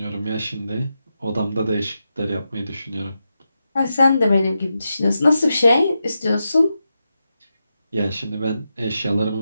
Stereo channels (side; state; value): both; inverted; correlation -0.88